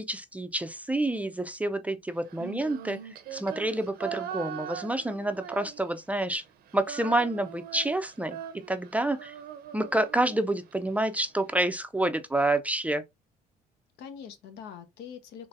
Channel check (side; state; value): both; normal; correlation 0.73